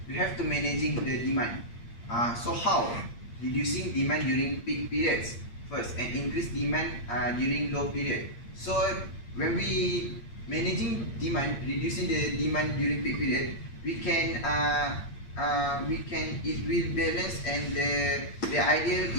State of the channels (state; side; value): late; right; 8.7 ms